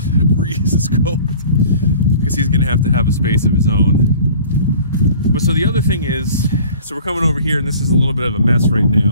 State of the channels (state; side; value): inverted; both; correlation -0.47